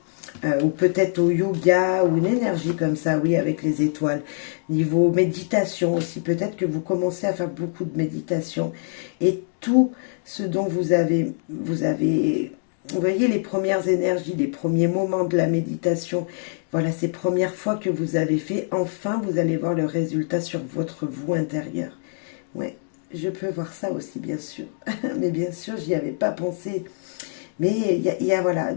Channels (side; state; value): right; silent; digital silence